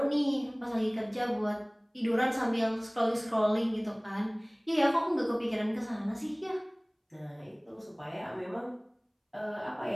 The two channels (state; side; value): identical; both; correlation 1.00